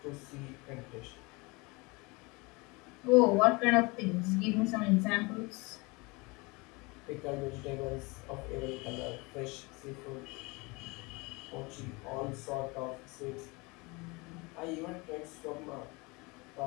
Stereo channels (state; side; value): quieter; right; 26.2 dB